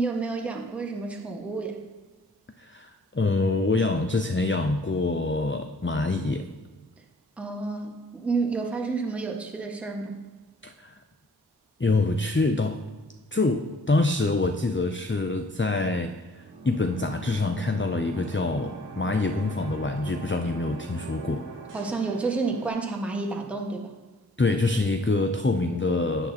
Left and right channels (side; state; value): both; normal; correlation 0.58